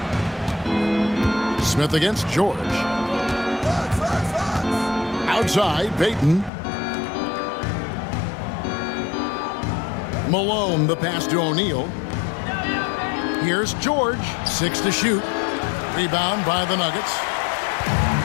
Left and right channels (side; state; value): right; drops out; at 6.5 s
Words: Smith against George. Outside, Payton. Malone, the pass to O'Neal. Here's George, 6 to shoot. Rebound by the Nuggets.